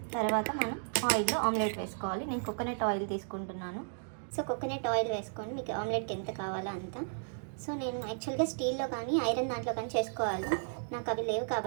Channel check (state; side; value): silent; left; digital silence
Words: తర్వాత మనం ఆయిల్లో ఆమ్లెట్ వేసుకోవాలి. నేను కోకోనట్ ఆయిల్ తీసుకుంటున్నాను. సో కోకోనట్ ఆయిల్ వేసుకొని మీకు ఆమ్లెట్కి ఎంత కావాలో అంత. సో నేను యాక్చువల్గా స్టీల్లో కానీ ఐరన్ దాంట్లో కానీ చేసుకోవాలి. నాకు అవి లేవు